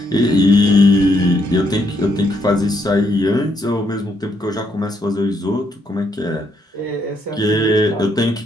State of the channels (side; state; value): both; normal; correlation 0.74